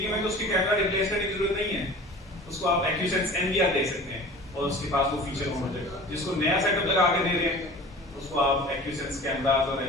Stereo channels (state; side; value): normal; both; correlation 0.41